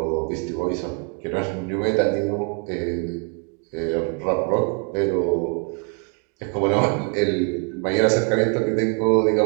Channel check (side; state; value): left; quieter; 39.3 dB